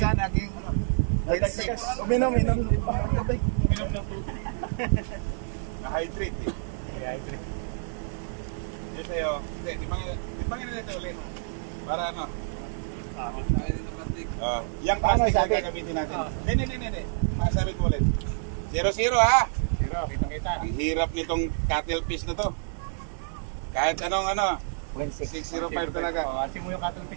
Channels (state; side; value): silent; left; 59 dB below the other